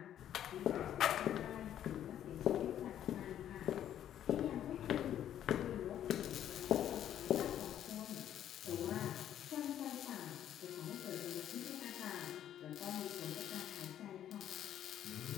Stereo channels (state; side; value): quieter; right; 10.8 dB